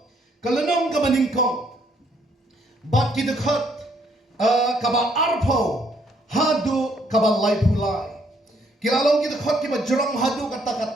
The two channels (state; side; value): normal; both; correlation 0.68